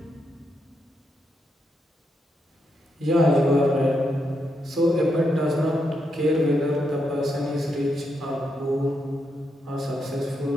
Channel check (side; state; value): both; normal; correlation 0.81